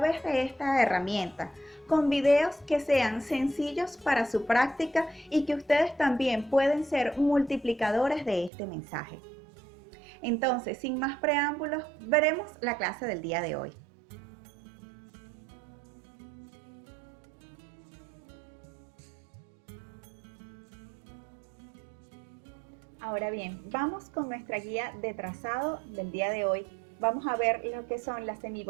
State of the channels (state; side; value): drops out; left; at 8.5 s